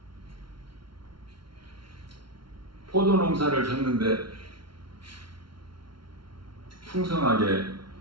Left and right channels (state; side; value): late; left; 0.73 ms